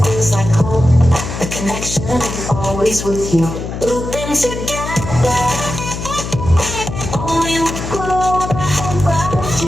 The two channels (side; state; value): left; noise; hum, 7 dB below the sound